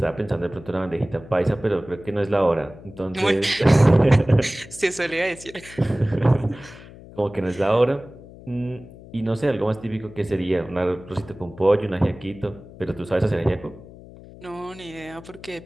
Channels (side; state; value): left; noise; hum, 18 dB below the sound